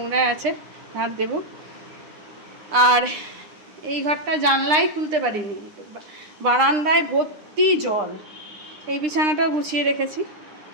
আছে, ঝাড় দেব। আর এই ঘরটা জানলাই খুলতে পারিনি, বারান্দায় ভর্তি জল। এই বিছানাটাও গুছিয়ে রেখেছি।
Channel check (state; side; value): late; left; 9.9 ms